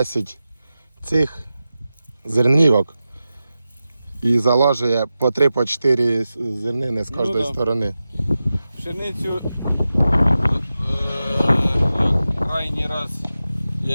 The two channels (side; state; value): both; inverted; correlation -0.93